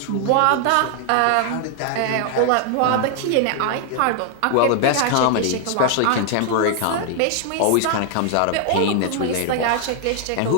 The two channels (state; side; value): different; both; correlation 0.00